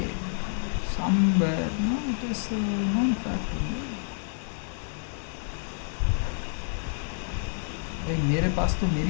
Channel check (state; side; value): silent; right; digital silence